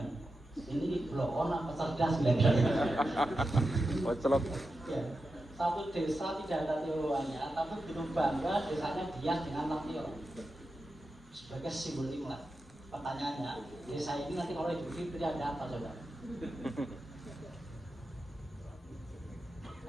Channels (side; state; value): both; normal; correlation 0.90